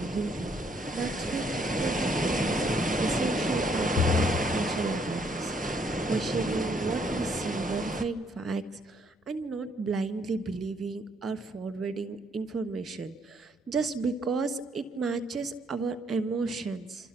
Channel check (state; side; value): normal; both; correlation 0.68